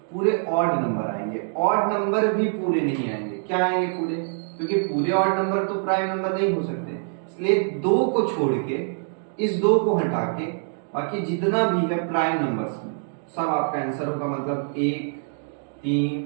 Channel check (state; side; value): silent; left; digital silence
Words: पूरे ऑड नंबर आएंगे। ऑड नंबर भी पूरे नहीं आएंगे, क्या आएंगे पूरे, क्योंकि पूरे ऑड नंबर तो प्राइम नंबर नहीं हो सकते, इसलिए 2 को छोड़ के, इस 2 को हटा के बाकी जितना भी है प्राइम नंबर्स में सब आपका आंसर होगा। मतलब 1 3